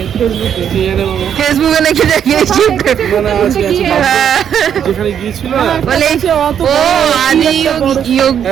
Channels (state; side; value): quieter; left; 8.7 dB